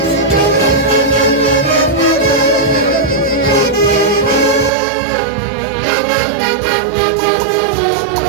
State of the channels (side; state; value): left; drops out; at 4.7 s